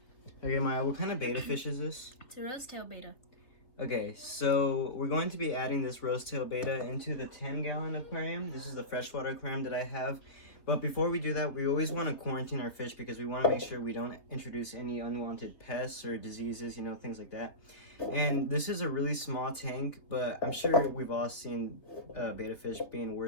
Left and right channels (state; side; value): late; right; 3.3 ms